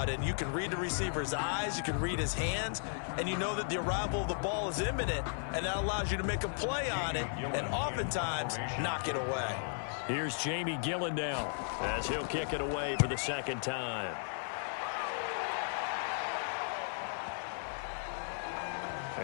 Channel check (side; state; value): right; silent; 54 dB below the other